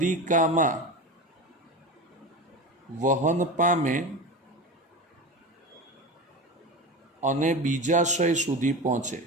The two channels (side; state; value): both; normal; correlation 0.26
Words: વહન પામે અને બીજાશય સુધી પહોંચે.